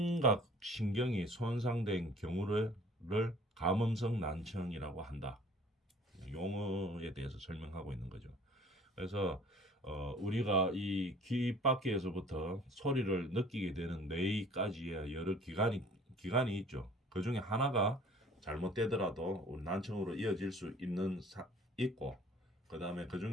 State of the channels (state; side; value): normal; both; correlation 0.51